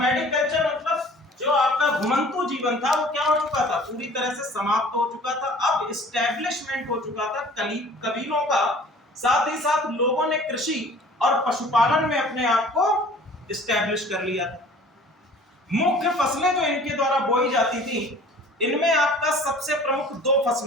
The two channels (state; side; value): normal; both; correlation 0.48